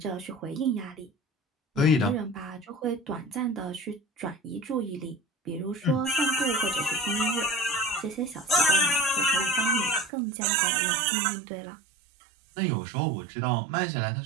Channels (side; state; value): left; drops out; at 10.1 s